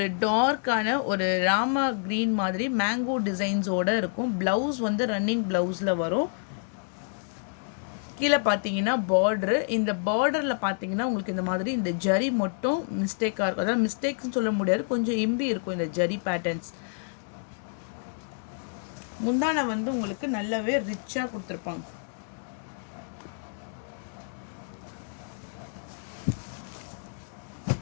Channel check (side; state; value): right; silent; digital silence